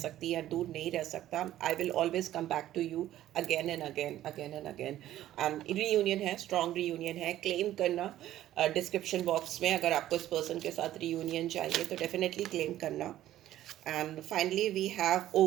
या दूर नहीं रह सकता। I will always come back to you again and again, again and again. And reunion है, स्ट्रॉन्ग रीयूनियन है, क्लेम करना डिस्क्रिप्शन बॉक्स में। अगर आपको इस पर्सन के साथ रीयूनियन चाहिए तो डेफिनेटली क्लेम करना। And finally we have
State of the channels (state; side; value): quieter; left; 13.2 dB